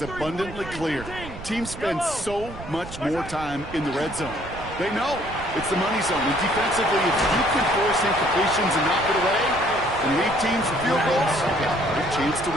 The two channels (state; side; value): noise; right; rumble, 13 dB below the sound